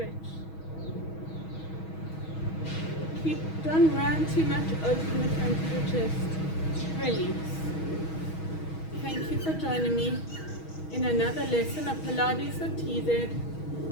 Don't round too much, open the front of the chest, release. Thank you for joining me in another lesson of Pilates with TZ.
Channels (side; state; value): right; late; 6.3 ms